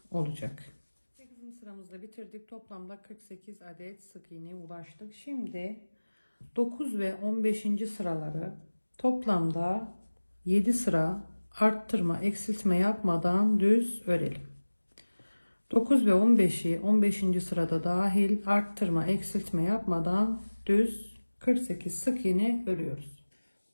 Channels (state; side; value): inverted; both; correlation -1.00